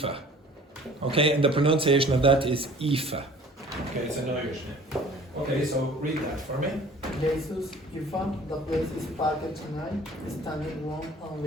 Okay, and the pronunciation of that is Aoife. Okay, it's an Irish name. Okay, so read that for me. Jesus, Ivan, the place is parked tonight, standing room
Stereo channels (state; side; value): normal; both; correlation 0.49